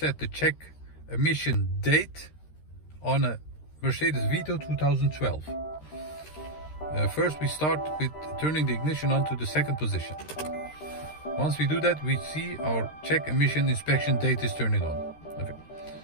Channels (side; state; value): right; late; 13 ms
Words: the check emission date on a Mercedes Vito 2012. First we start with turning the ignition on to the second position. Once we do that, we see our check emission inspection date is turning on. Okay.